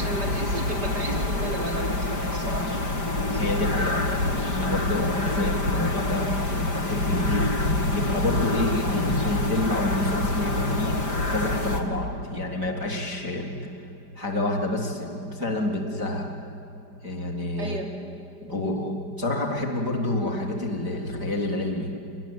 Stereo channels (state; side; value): late; left; 5.0 ms